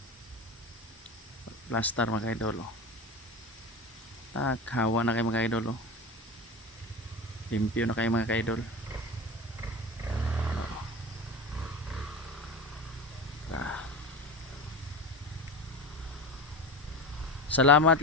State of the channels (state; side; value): normal; both; correlation 0.28